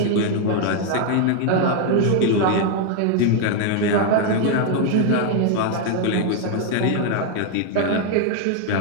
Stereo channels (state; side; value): different; both; correlation 0.00